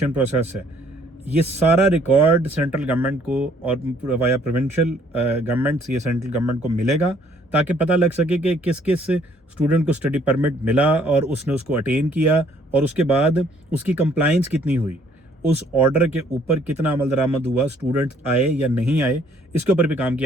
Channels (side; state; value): both; normal; correlation 0.62